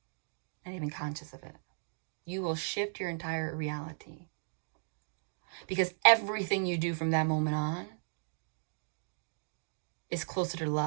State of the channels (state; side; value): silent; left; digital silence